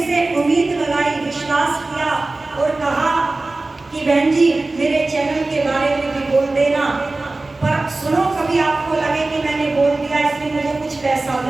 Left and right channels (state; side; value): quieter; left; 3.2 dB